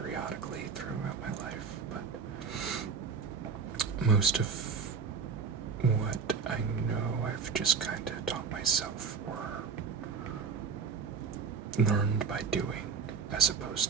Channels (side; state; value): left; quieter; 5.7 dB